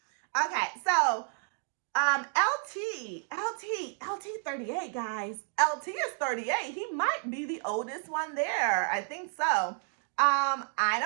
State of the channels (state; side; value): silent; left; 57 dB below the other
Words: Okay, so LT 38, guys. LT is 38. He might be the oldest one there. I think so. I